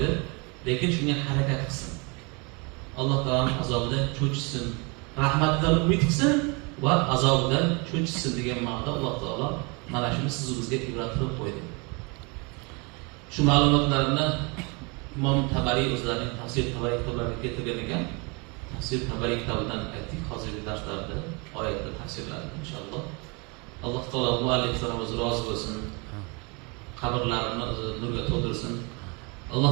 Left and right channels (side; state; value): left; quieter; 30.4 dB